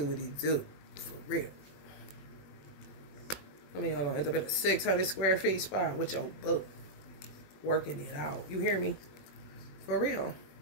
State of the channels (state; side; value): late; right; 21 ms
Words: what he do. For real. I mean, hold on. End up in a 600 square feet spot with your book. Working it out. You hear me? For real.